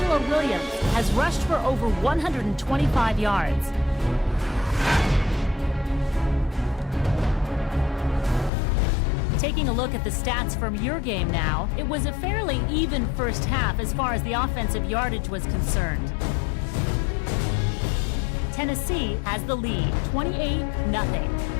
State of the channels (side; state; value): right; drops out; at 8.5 s